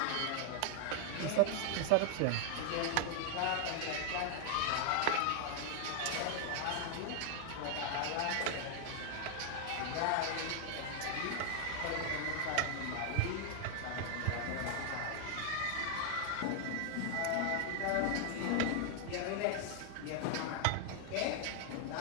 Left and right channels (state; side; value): different; both; correlation 0.00